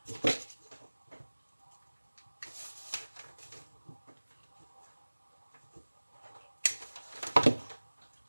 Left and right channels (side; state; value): both; inverted; correlation -1.00